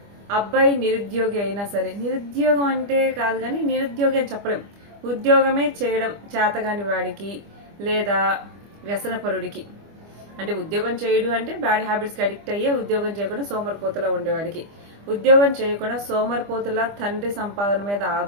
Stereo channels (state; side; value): late; left; 25 ms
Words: అబ్బాయి నిరుద్యోగి అయినా సరే, నిరుద్యోగం అంటే కాదు కానీ నిరుద్యోగి అని చెప్పలేం, ఉద్యోగమే చేయడం చేతగాని వాడికి లేదా వ్యసనపరుడికి, అంటే ఉద్యోగం చేయడు అంటే బ్యాడ్ హ్యాబిట్స్కి అడిక్ట్ అయ్యే ఉద్యోగం చేయకుండా సోమరిపోతులా ఉండేవాడికి, ఉద్యోగం చేయకుండా సోమరిపోతులా తండ్రి సంపాదన మీద